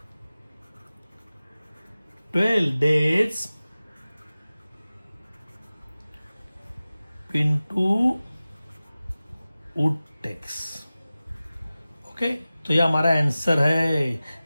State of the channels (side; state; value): both; inverted; correlation -0.97